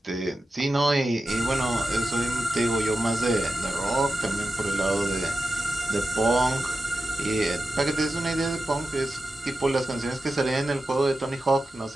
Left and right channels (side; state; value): both; normal; correlation 0.91